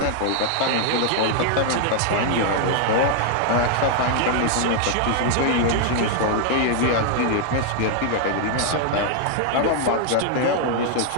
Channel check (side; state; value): both; different; correlation 0.00